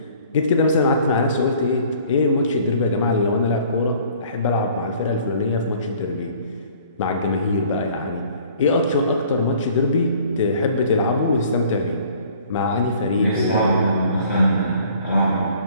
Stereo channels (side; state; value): both; inverted; correlation -0.54